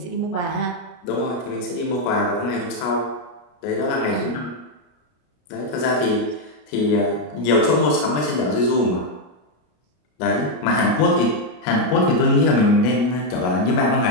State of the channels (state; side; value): late; right; 33 ms